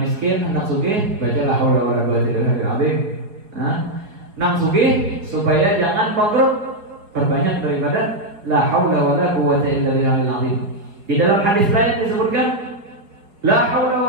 nang sugih, baca la haula wala quwwata illa billahil azim. Nang sugih supaya jangan bangkrut, perbanyak daripada la haula wala quwwata illa billahil azim. Di dalam hadis lain disebutkan la haula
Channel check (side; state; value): left; late; 4.9 ms